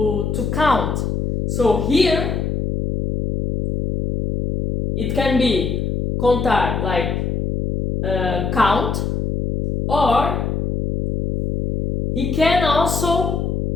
count. So here, it can be contar like count, or he can also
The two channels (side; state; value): left; noise; hum, 1 dB below the sound